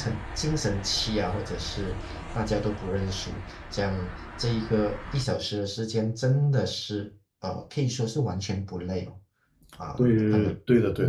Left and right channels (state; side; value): identical; both; correlation 1.00